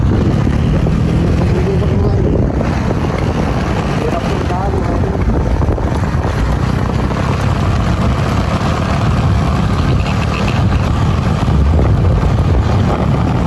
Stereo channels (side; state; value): both; identical; correlation 1.00